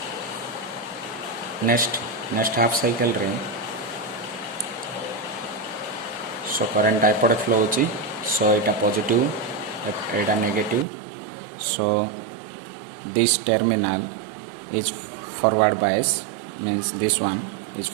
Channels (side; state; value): left; drops out; at 10.9 s